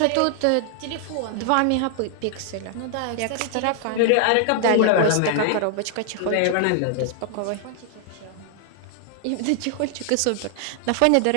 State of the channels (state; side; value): different; both; correlation 0.00